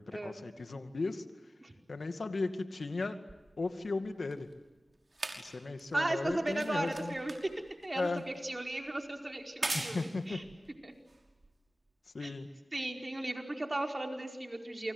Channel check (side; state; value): both; normal; correlation 0.96